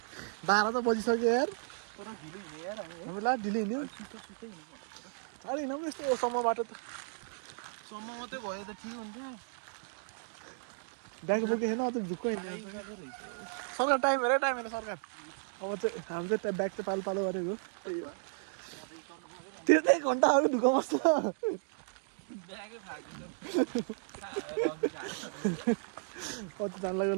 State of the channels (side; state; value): left; silent; digital silence